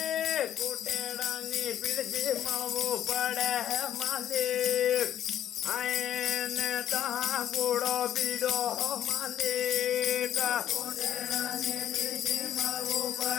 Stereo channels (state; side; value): quieter; right; 10.9 dB